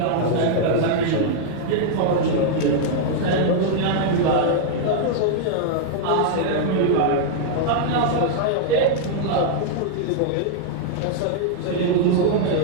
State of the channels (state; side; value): different; both; correlation -0.01